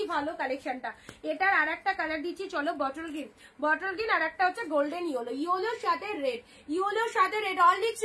ভালো কালেকশনটা। এটার আর একটা কালার দিচ্ছি, চলো বটল গ্রিন, আর একটা হচ্ছে গোল্ডেন ইয়েলো, ইয়েলোর সাথে রেড, অনলি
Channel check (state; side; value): identical; both; correlation 1.00